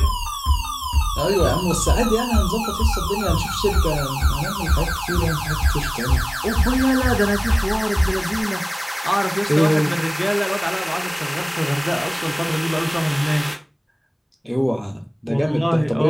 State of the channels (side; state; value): both; identical; correlation 1.00